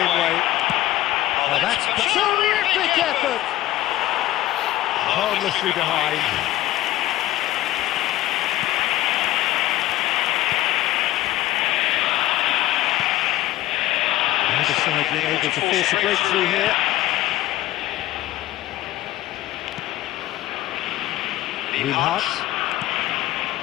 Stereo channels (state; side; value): quieter; right; 15.5 dB